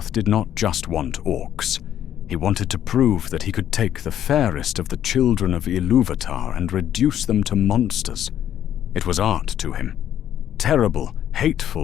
did not just want orcs. He wanted to prove that he could take the fairest of the children of Ilúvatar and reduce them to monsters. It was art to him. Terrible,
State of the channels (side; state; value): right; quieter; 10.7 dB